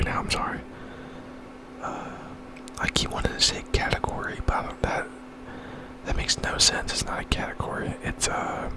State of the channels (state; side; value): identical; both; correlation 1.00